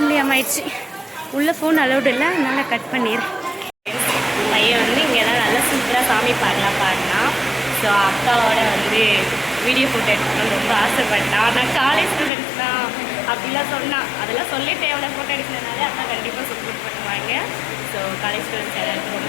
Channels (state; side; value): drops out; right; at 12.3 s